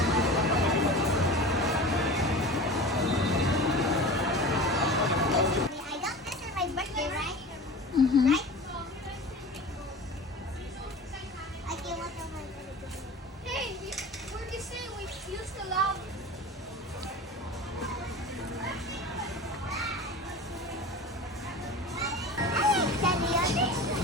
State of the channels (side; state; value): both; normal; correlation 0.35